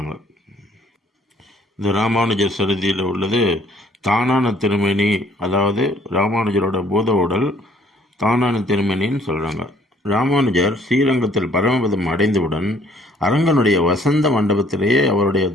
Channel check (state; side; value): normal; both; correlation 0.60